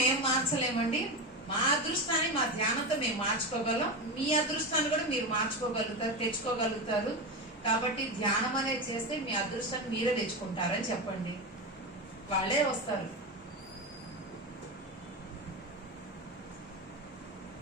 మేము మార్చలేమండి, మా అదృష్టాన్ని మా ధ్యానంతో మేము మార్చుకోగలం. మీ అదృష్టాన్ని కూడా మీరు మార్చుకోగలుగుతారు, తెచ్చుకోగలుగుతారు. కాబట్టి ధ్యానం అనేది చేస్తే మీ అదృష్టాన్ని మీరే తెచ్చుకుంటారని చెప్పండి. వాళ్ళే వస్తారు.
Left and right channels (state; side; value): normal; both; correlation 0.18